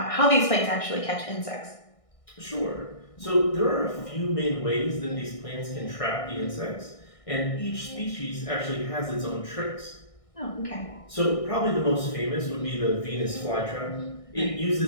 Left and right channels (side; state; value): right; late; 1.6 ms